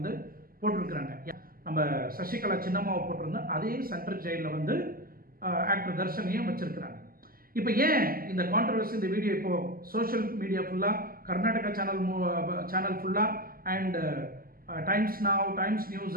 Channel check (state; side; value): late; left; 0.42 ms